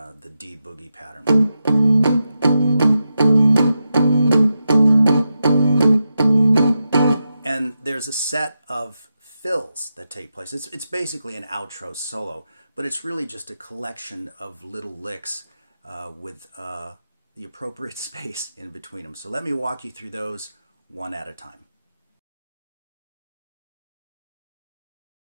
D boogie pattern. And there's a set of fills that take place. It's basically an outro solo, but it's really just a collection of little licks with the appropriate space in between them. So let me walk you through those one at a time.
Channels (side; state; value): both; inverted; correlation -0.88